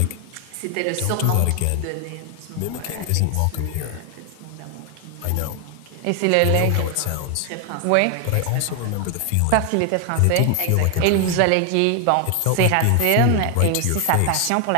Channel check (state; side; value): different; both; correlation 0.00